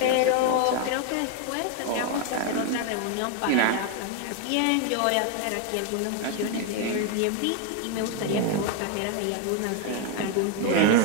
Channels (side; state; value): both; different; correlation 0.01